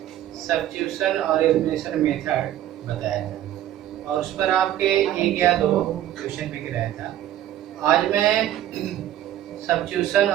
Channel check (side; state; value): left; quieter; 12.4 dB